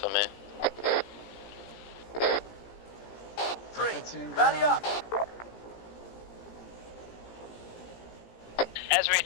me. Rally up! Ezri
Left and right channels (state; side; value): late; right; 17 ms